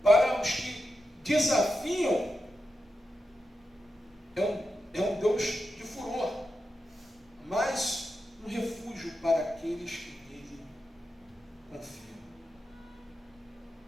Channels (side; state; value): both; normal; correlation 0.88